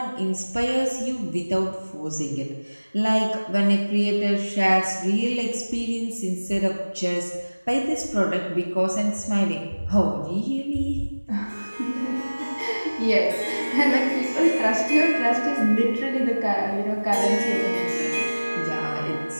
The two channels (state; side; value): inverted; both; correlation -1.00